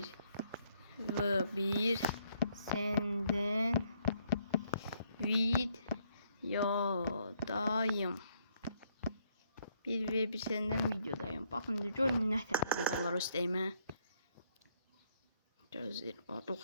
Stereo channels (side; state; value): both; inverted; correlation -0.71